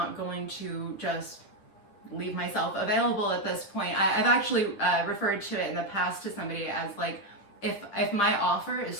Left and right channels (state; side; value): late; right; 10 ms